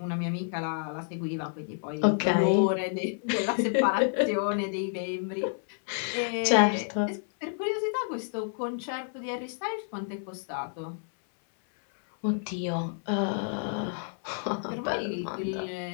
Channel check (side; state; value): right; silent; 58 dB below the other